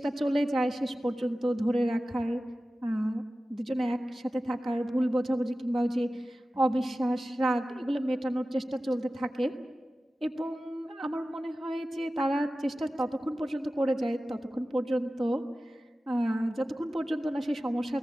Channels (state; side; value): normal; both; correlation 0.95